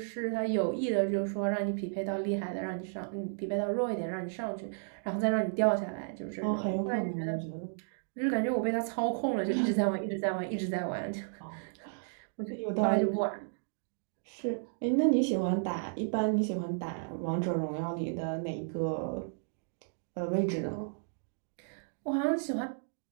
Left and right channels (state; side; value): silent; left; digital silence